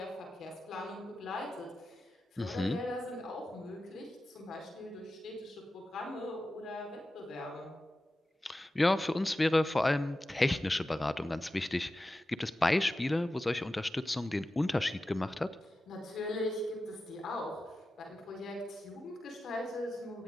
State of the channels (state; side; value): normal; both; correlation 0.93